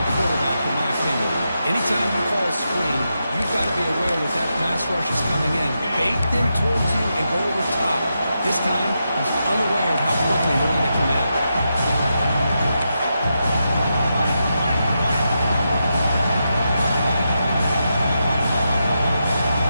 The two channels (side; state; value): both; inverted; correlation -0.86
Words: quarterback, in my opinion. Anytime you call a screen, you've got to be aware that that pass rush is coming in. Bait them towards you and go over top. This time, he's unaware of how quickly they're going to come in.